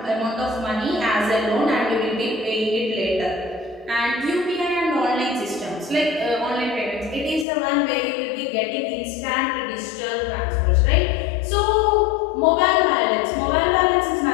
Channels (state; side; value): drops out; right; at 7.5 s